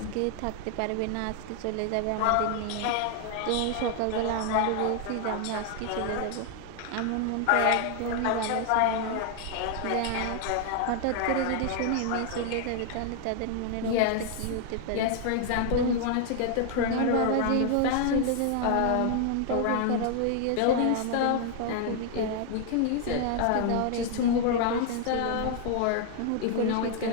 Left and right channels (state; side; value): different; both; correlation 0.00